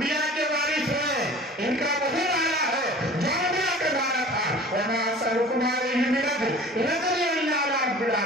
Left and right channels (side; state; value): both; normal; correlation 0.43